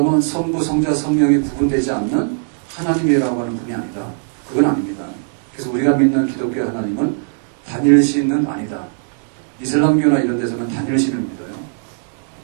성부, 성자, 성령이 구분되지 않는 하나님이라고 하는 분이 아니다. 그건 아닙니다. 그래서 우리가 믿는 기독교 하나님은 단일신은 아니다. 이슬람교나 이런 데서는 단일신을 믿어요.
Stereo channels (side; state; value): left; silent; digital silence